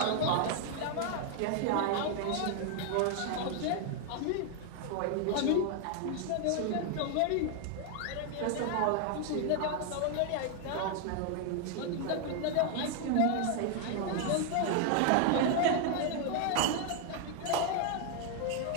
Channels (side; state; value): both; different; correlation 0.00